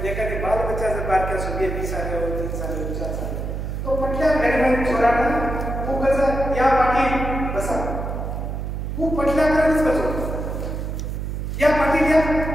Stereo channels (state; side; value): noise; right; hum, 4 dB below the sound